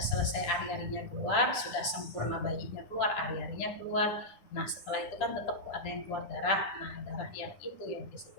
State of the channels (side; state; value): right; late; 9.9 ms